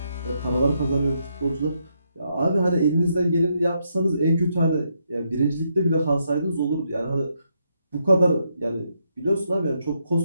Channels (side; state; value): both; inverted; correlation -0.79